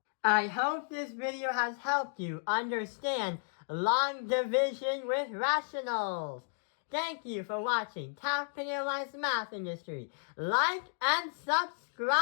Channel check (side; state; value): right; silent; digital silence